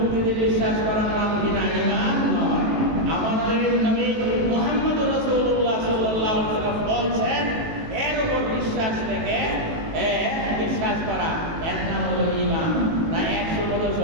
বিশ্বাস করার নাম কি না? ঈমান নয়। আমাদের নবী মুহাম্মদ রাসূলুল্লাহ সাল্লাল্লাহু আলাইহি ওয়াসাল্লাম বলছেন, এর উপর বিশ্বাস থেকে বিশ্বাস করা, এর নাম হলো ঈমান। না 100 বছর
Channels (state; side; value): late; left; 18 ms